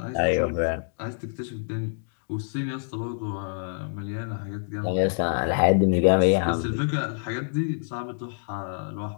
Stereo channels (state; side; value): silent; right; digital silence